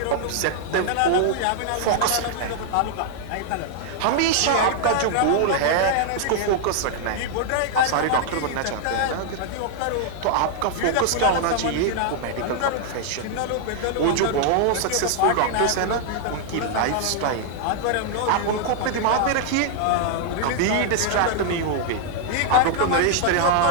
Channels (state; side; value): different; both; correlation -0.01